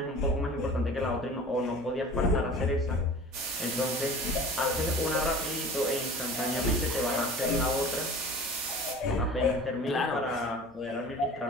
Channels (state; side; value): normal; both; correlation 0.41